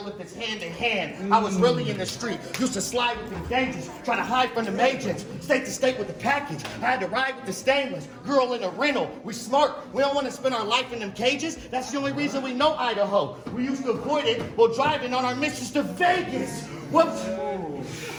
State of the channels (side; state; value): both; identical; correlation 1.00